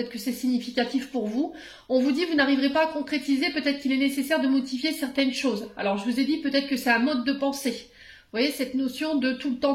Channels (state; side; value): identical; both; correlation 1.00